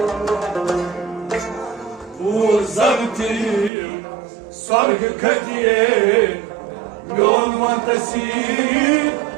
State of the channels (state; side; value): drops out; left; at 3.7 s